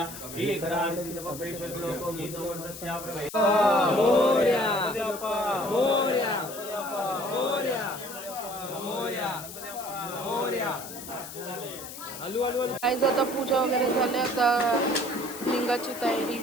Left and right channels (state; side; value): noise; left; hiss, 12 dB below the sound